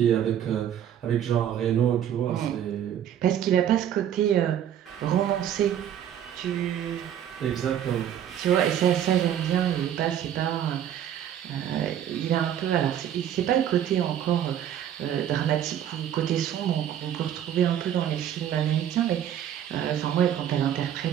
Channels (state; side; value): quieter; left; 10.2 dB